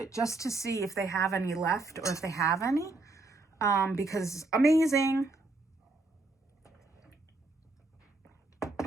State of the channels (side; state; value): left; quieter; 3.2 dB